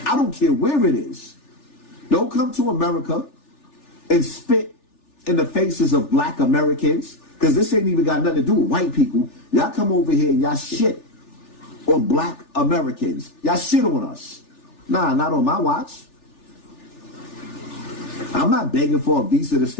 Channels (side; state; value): right; late; 3.4 ms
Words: I don't care where it is. Don't come to America and spit in the faces of black Americans, because this ain't even got nothing to do with white people. Y'all come over here and y'all shit on black Americans. Y'all shit on us. Nah, not on my watch. I'm not begging for a visa to